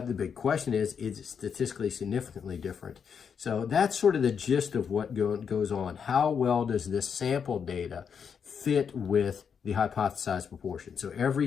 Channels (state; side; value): quieter; right; 6.9 dB